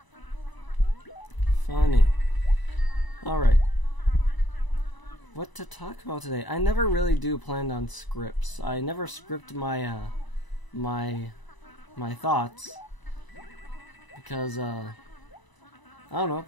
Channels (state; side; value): late; right; 1.0 ms